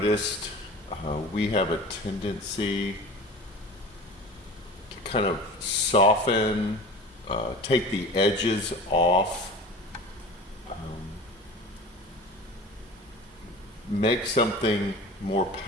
we have a tendency to kind of soften, take the edges off, make something more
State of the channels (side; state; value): both; normal; correlation 0.37